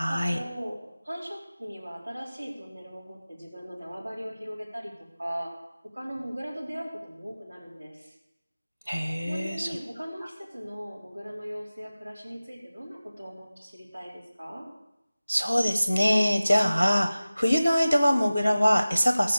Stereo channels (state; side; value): inverted; both; correlation -0.97